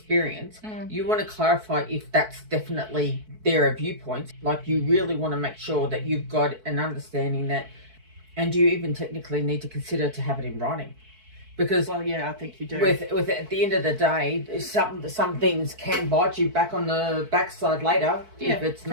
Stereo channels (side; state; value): left; late; 4.6 ms